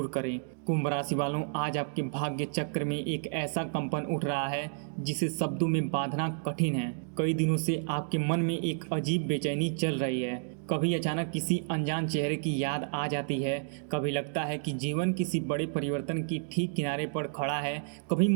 करें। कुंभ राशि वालों, आज आपके भाग्य चक्र में एक ऐसा कंपन उठ रहा है जिसे शब्दों में बांधना कठिन है। कई दिनों से आपके मन में एक अजीब बेचैनी चल रही है। कभी अचानक किसी अनजान चेहरे की याद आ जाती है, कभी लगता है कि जीवन किसी बड़े परिवर्तन की ठीक किनारे पर खड़ा है, कभी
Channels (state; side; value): silent; left; digital silence